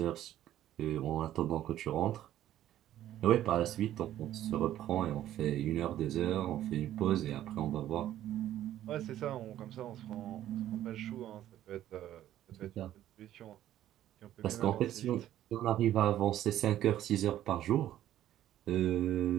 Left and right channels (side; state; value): left; quieter; 12.5 dB